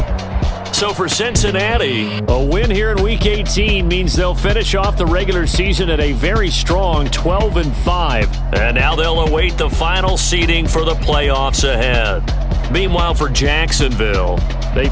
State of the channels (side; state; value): both; identical; correlation 1.00